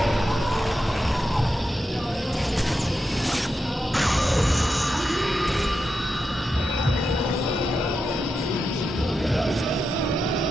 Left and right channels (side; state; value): both; normal; correlation 0.87